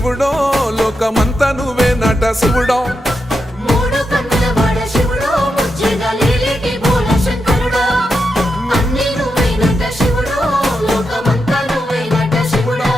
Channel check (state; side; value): normal; both; correlation 0.86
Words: లోకమంతా నువ్వే నట శివుడో